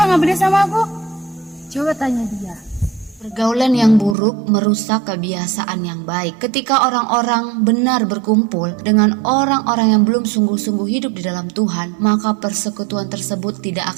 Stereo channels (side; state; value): left; drops out; at 4.2 s